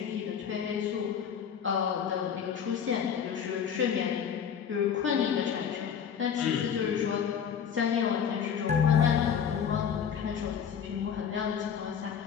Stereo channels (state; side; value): quieter; right; 7.8 dB